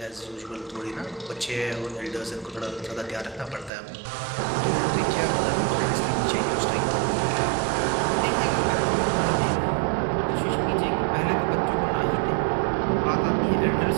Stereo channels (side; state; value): left; drops out; at 3.7 s